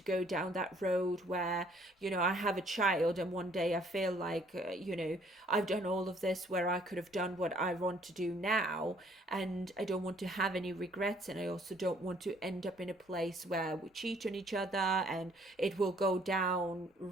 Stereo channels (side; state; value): both; normal; correlation 0.61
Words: go down that road where, you know, I have a child and one day I feel like, you know, I've done all of this where I could have done what I want to do now, and I don't want to have any regrets. And I also don't want to end up in a place where we cheat on each other and it will go down